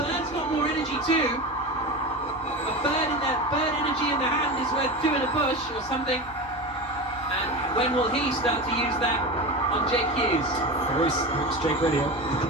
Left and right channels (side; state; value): both; normal; correlation 0.25